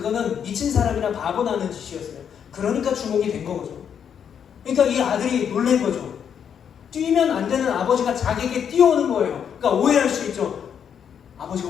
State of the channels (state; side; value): quieter; right; 8.0 dB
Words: 미친 사람이나 바보 나는 짓이었어요. 그러니까 주목이 된 거죠. 그러니까 이 아들이 놀란 거죠. 뛰면 안 되는 아버지가 자기에게 뛰어오는 거예요. 그러니까 오해할 수 있죠.